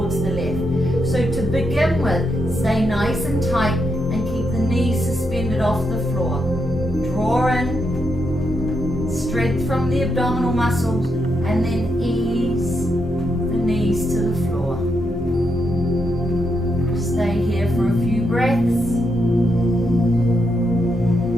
the left. So to begin with, stay nice and tight and keep the knees suspended off the floor. Draw in, strength from the abdominal muscles, and then ease the knees to the floor. Stay here for a few breaths.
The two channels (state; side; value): normal; both; correlation 0.81